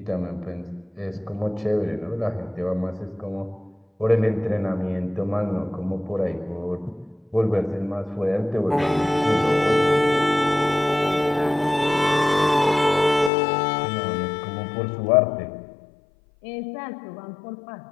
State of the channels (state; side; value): drops out; right; at 13.3 s